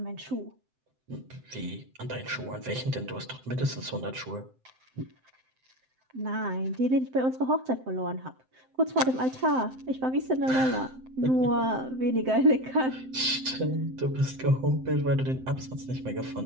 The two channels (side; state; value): left; late; 7.7 ms